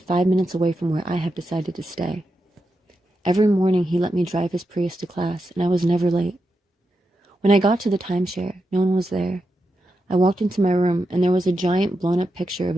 minutes away from where I have decided to stay. Every morning he let me drive his Prius to class, and I was never late. When I got to the timeshare, no one was there. I walked into my room, and there was a giant blown-up picture of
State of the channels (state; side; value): normal; both; correlation 0.87